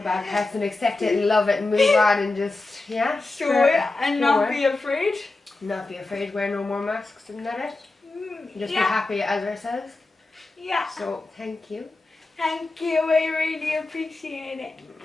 bad parts and accept it and love it and move on and just, show it and not be afraid. Not be afraid, wear no more masks, and that it. Just be happy as ourselves. Yeah. So, thank you. Thank you, I really appreciate it.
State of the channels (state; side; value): quieter; right; 3.3 dB